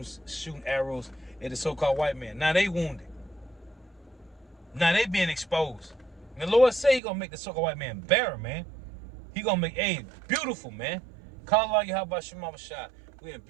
arrows at the so-called white man. Now they wounded. Now they being exposed. And the Lord say he gonna make the so-called white man better, man. He gonna make beautiful, man. Call Allah Yahweh Shema Shah. We in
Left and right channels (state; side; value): drops out; left; at 7.0 s